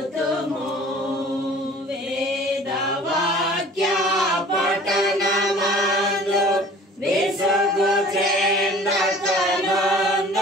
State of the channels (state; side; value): normal; both; correlation 0.47